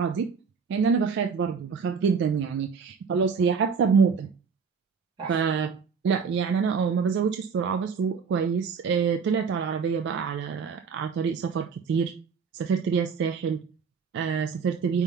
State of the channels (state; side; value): quieter; left; 5.9 dB